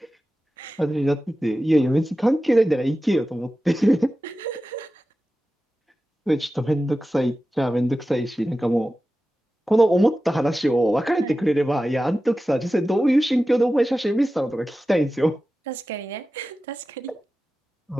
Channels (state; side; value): normal; both; correlation 0.94